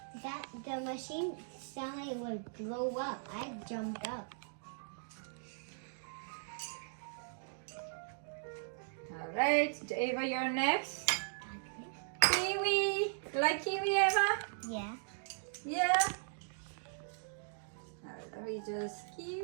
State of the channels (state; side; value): silent; left; digital silence